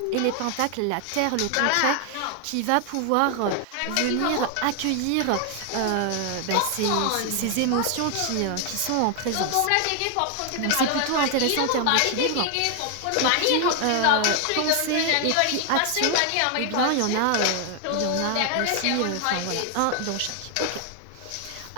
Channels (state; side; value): different; both; correlation 0.00